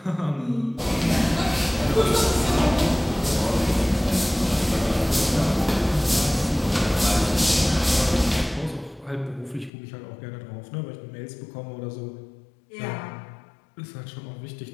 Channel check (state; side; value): drops out; right; at 9.7 s